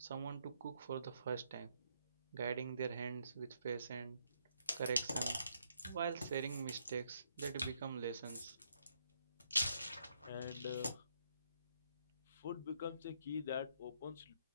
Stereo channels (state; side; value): inverted; both; correlation -0.74